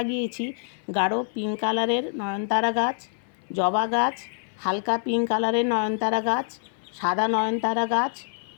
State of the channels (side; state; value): right; silent; 56 dB below the other